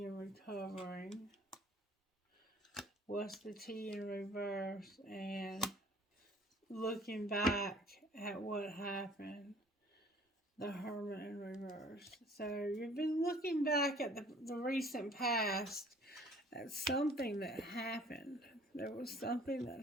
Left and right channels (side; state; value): both; normal; correlation 0.54